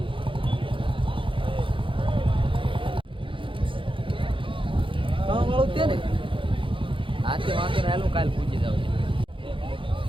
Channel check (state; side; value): late; left; 0.25 ms